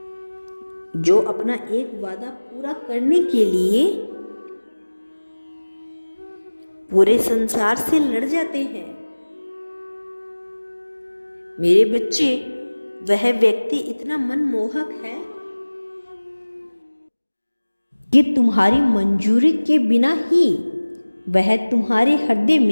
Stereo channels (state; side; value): inverted; both; correlation -1.00